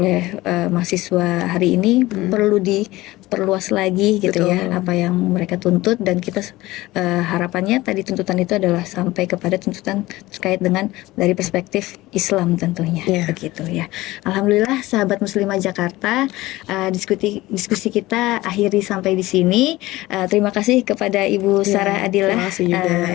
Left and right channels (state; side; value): quieter; right; 18.5 dB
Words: mahasiswa hari ini perlu diperluas lagi gitu. Betul. Ya, apa yang mereka tuntut, dan kita harapannya tadi tuntutan itu adalah sampai kepada tuntutan terkait dengan dari perspektif Islam tentunya begitu ya. Alhamdulillah sahabat muslimah Jakarta, diskusi kita akhiri sampai di sini. Terima kasih kepada Ibu Sarah Adilah,